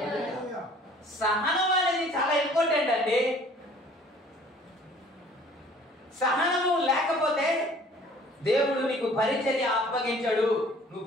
సహనం అనేది చాలా ఇంపార్టెంట్ అండి. సహనము లేకపోతే దేవుడు నీకు పరిచర్య అప్పగించడు, నువ్వు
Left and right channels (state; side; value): normal; both; correlation 0.53